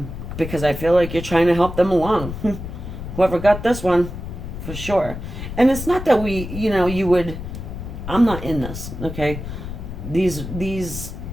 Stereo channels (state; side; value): noise; left; rumble, 8 dB below the sound